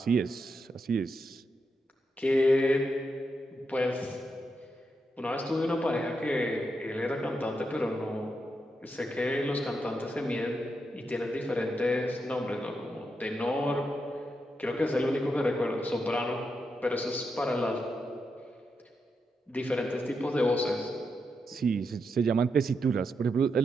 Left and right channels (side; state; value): both; normal; correlation 0.84